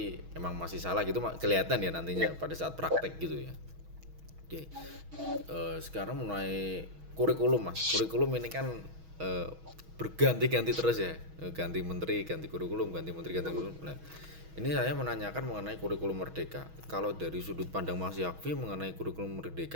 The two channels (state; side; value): late; left; 6.3 ms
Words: emang masih salah gitu kelihatan ya nantinya pada saat praktek gitu ya. Oke. Sekarang mulai kurikulum Mas. Kurikulum ini kan berganti-ganti terus ya. Ganti menteri, ganti kurikulum, ganti menteri, ganti kurikulum. Nah, ini saya menanyakan mengenai kurikulum merdeka. Kalau dari sudut pandang Mas Yakfi mengenai kurikulum